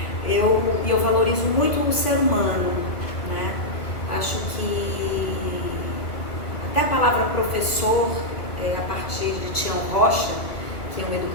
eu valorizo muito o ser humano, né? Acho que até a palavra professor, a partir de Tião Rocha, que é um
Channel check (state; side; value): late; right; 1.4 ms